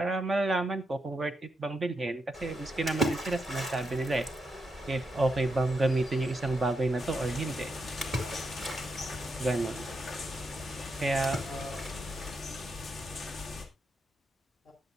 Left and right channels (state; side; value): normal; both; correlation 0.83